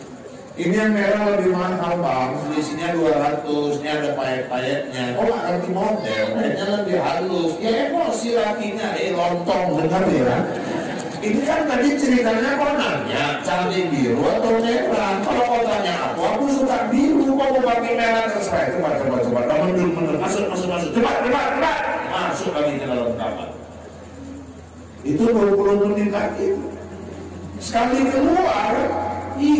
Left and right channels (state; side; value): identical; both; correlation 1.00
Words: Ini yang merah lebih mahal Bang, selisihnya 200, ini ada payet-payetnya. Kok gak ngerti model, payetnya lebih halus. Ya emosi lakinya, lontong, dengar ya. Ini kan tadi ceritanya kok nanya, cantik biru atau merah. Kalau kau tanya aku suka biru, kok mau pakai merah terserah. Coba, mundur, masuk, cepat, masuk lagi ke dalam kamar. Itu 20 menit lagi. Sekali keluar,